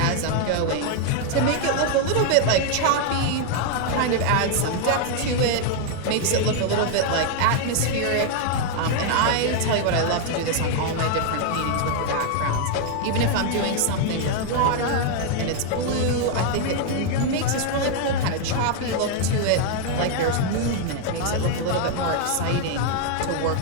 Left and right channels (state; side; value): different; both; correlation 0.00